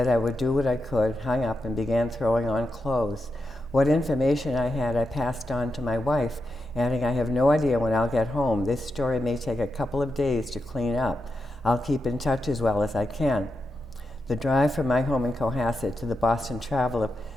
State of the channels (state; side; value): normal; both; correlation 0.87